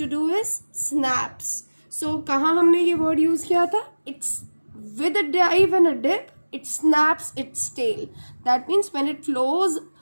do is snaps. So कहाँ हमने ये word use किया था? It's with a dive and a dip. It snaps its tail. That means when it flows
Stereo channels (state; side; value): inverted; both; correlation -1.00